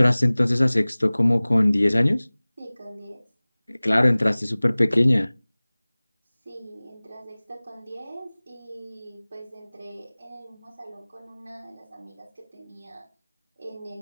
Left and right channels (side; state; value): both; inverted; correlation -1.00